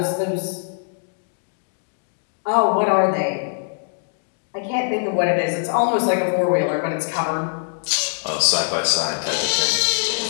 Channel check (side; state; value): right; silent; digital silence